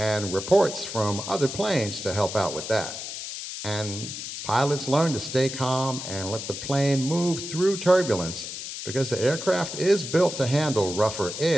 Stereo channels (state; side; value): noise; left; hiss, 8 dB below the sound